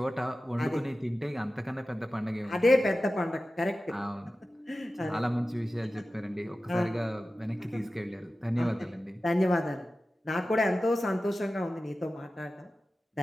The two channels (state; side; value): normal; both; correlation 0.95